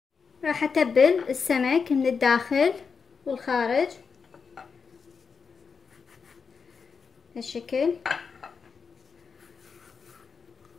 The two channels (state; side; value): quieter; right; 5.5 dB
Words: راح اتبل السمك من الداخل والخارج بهالشكل.